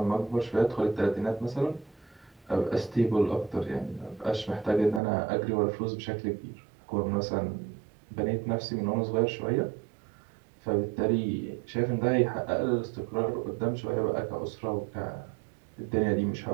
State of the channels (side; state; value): left; drops out; at 5.0 s